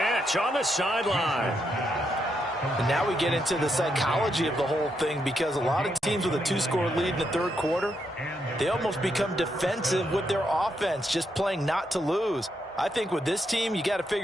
on the sideline. And now we get into the psychology of the whole thing, because a lot of teams with a 2-score lead in the third quarter, they almost become defensive with their offense, just playing not to lose. I think with this team, you got to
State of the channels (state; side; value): normal; both; correlation 0.80